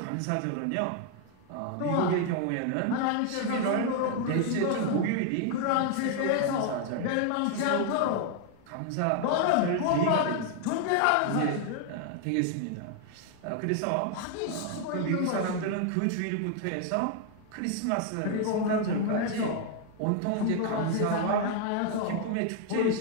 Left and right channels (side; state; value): both; different; correlation 0.00